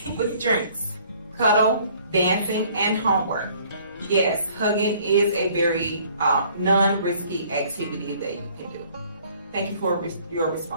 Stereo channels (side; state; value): both; inverted; correlation -0.58